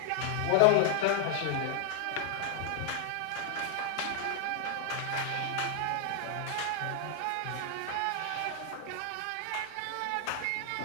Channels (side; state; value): both; different; correlation 0.00